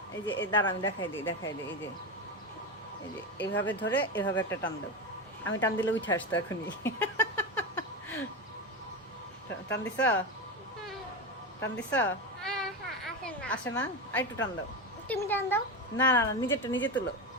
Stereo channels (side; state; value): both; normal; correlation 0.17